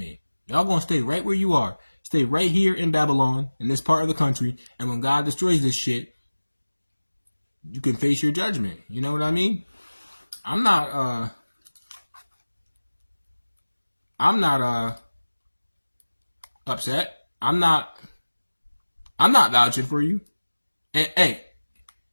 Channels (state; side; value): inverted; both; correlation -1.00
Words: Y'all gonna stay right where you are. Stay right here in Babylon, in this part of the country. And when God destroys this shit, you can face your judgment. You know what I mean? I'm not upset. I'm not vouching for you. And hey,